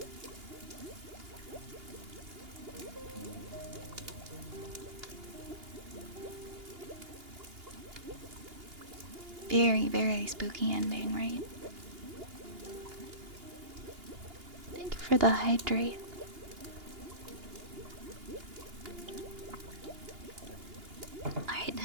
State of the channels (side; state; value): left; late; 2.8 ms